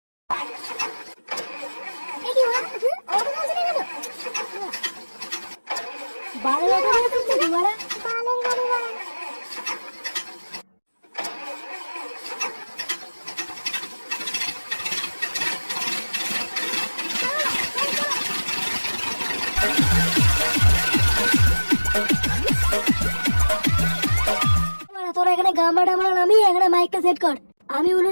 বালের গাড়ি তুলছে কি বাড়া? বালের গাড়ি বাড়া। তোরা এখানে গামবাটা মারা নামিয়ে এখানে মাইকটা সেট কর। আমি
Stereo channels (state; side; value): inverted; both; correlation -1.00